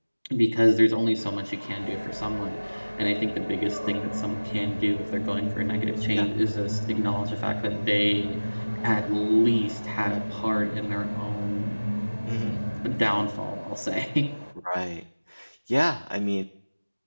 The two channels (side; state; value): both; inverted; correlation -1.00